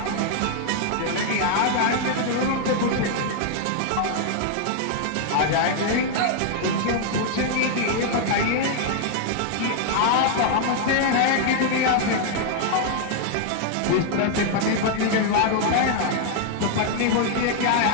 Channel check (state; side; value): different; both; correlation 0.00